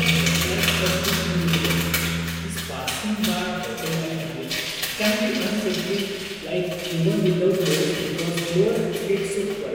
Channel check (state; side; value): identical; both; correlation 1.00